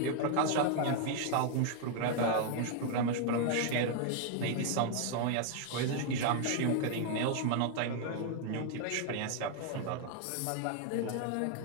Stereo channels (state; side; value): different; both; correlation 0.00